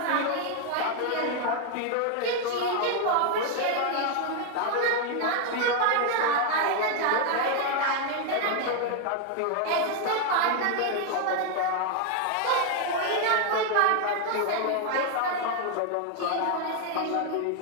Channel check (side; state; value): both; different; correlation 0.00